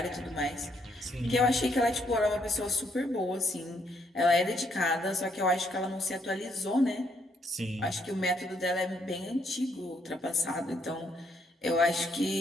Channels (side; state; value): both; normal; correlation 0.72